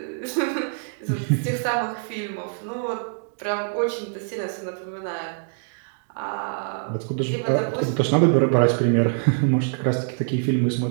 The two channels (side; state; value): left; silent; digital silence